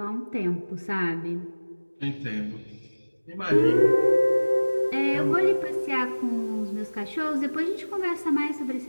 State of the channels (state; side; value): inverted; both; correlation -1.00